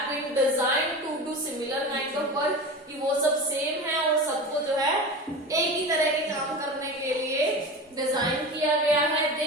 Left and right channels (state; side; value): normal; both; correlation 0.29